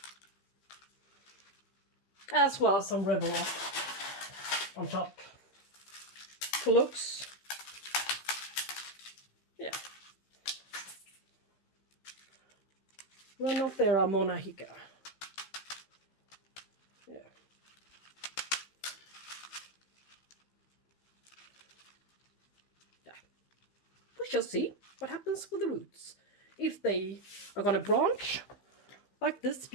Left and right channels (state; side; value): late; right; 15 ms